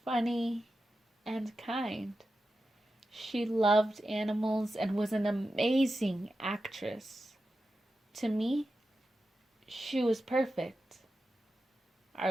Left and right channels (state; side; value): normal; both; correlation 0.91